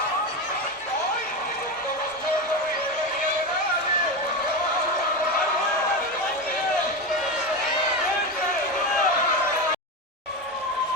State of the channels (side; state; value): both; normal; correlation 0.18